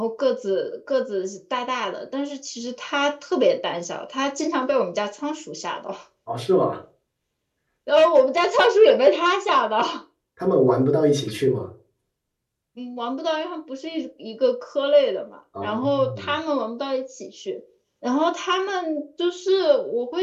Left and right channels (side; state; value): both; identical; correlation 1.00